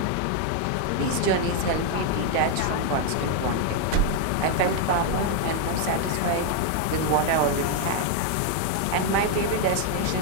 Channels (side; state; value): both; different; correlation 0.00